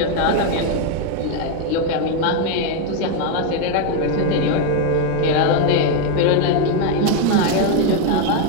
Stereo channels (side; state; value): both; different; correlation 0.01